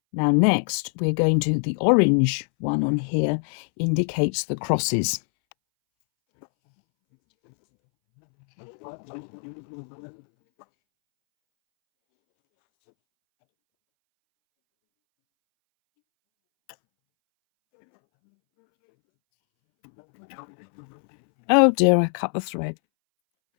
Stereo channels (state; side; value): silent; right; 64 dB below the other